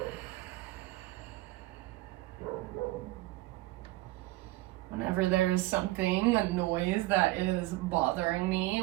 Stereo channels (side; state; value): left; quieter; 18.6 dB